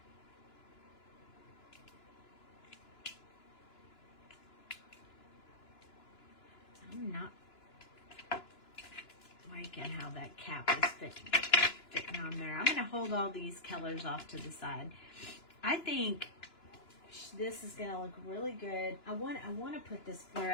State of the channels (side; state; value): right; late; 2.9 ms